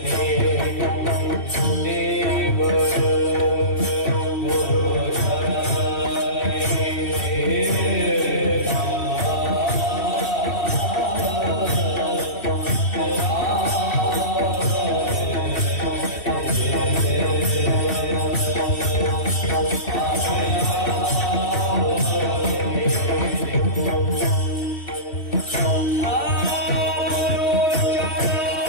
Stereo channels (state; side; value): late; right; 3.1 ms